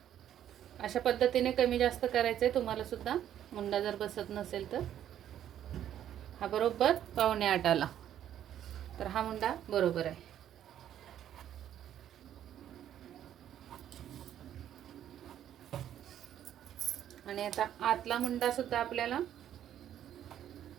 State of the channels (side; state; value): left; quieter; 10.8 dB